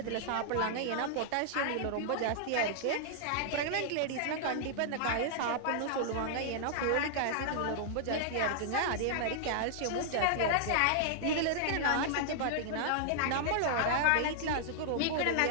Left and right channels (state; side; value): different; both; correlation -0.01